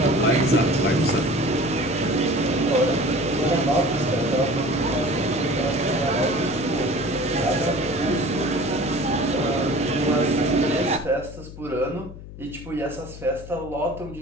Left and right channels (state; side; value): noise; left; hum, 14 dB below the sound